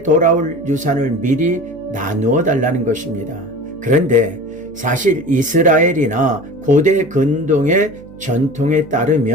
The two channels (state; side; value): noise; right; hum, 22 dB below the sound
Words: 돌아올 유산을 미리 나누어 달라는 것입니다. 그런데 사실 이스라엘이나 고대 근동의 전통에